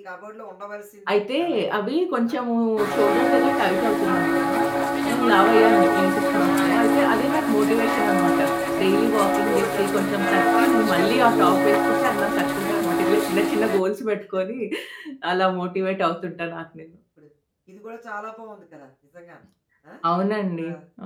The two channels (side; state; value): both; identical; correlation 1.00